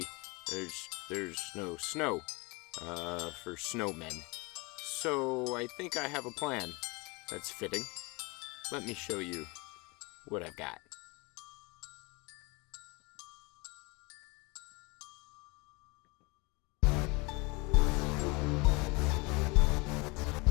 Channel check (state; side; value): quieter; right; 26.9 dB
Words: there's no snow for snowmen. So I think I have a plan that's fitting. Let me show you what I've got.